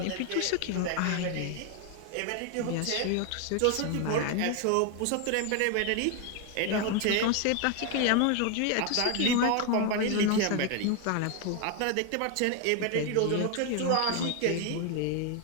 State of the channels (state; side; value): different; both; correlation 0.01